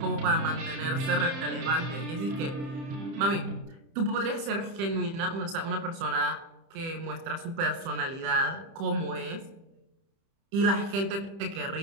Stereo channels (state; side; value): late; left; 30 ms